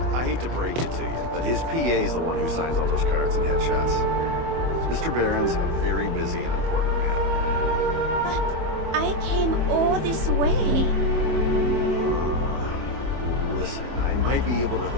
I hate to break it to you, but his PA's the one who signs all those cards and headshots. Mr. Barron's a very busy and important man. But I came all this way. Listen, I might be able to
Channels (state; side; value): late; left; 24 ms